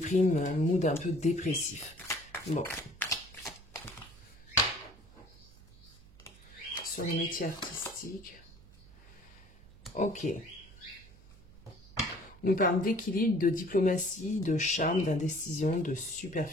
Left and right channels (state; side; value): noise; right; hum, 24 dB below the sound